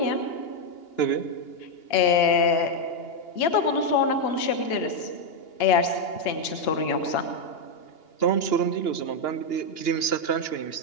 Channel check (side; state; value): right; late; 2.8 ms